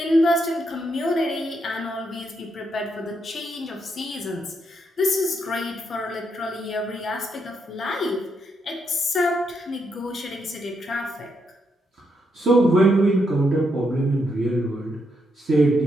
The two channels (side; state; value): both; normal; correlation 0.79